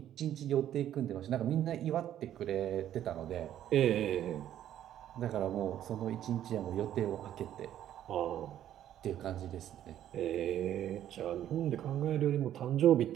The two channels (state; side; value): quieter; left; 11.4 dB